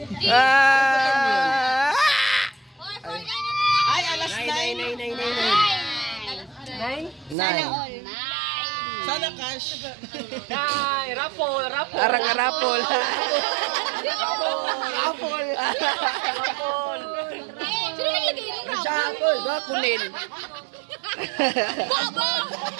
Ay, alas 9. 9. Sana cash. Ay, raffle. Arang-arapol. Sino naglagay ng rap? Shuffle. Kunil.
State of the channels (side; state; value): left; drops out; at 7.4 s